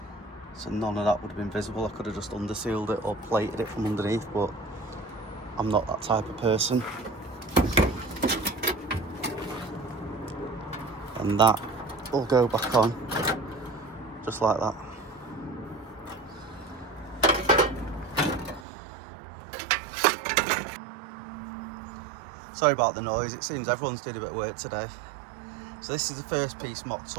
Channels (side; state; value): left; drops out; at 18.7 s